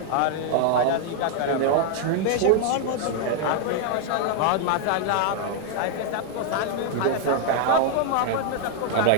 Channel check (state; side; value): different; both; correlation 0.00